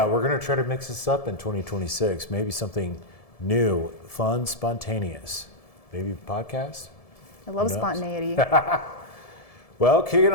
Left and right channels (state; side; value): late; right; 1.7 ms